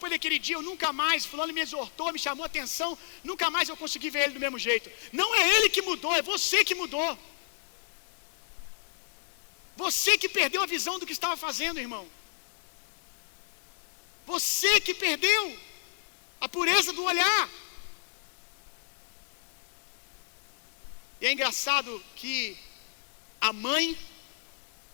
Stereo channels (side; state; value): right; silent; digital silence